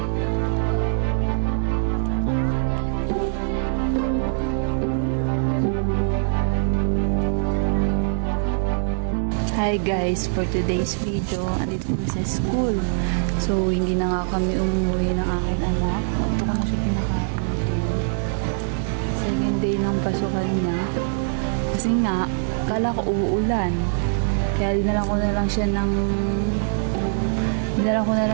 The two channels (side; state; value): left; silent; digital silence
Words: Hi guys, for today's video, andito kami sa school. So, hindi na nga kami umuwi ng aking anak. Ito ko na siya pinakain. Second day ng pasukan niya. Kasi nga, kala ko uulan. Kaya dinalan ko na lang siya ng